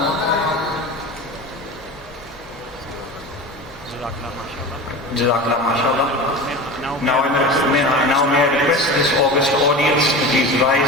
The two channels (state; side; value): normal; both; correlation 0.31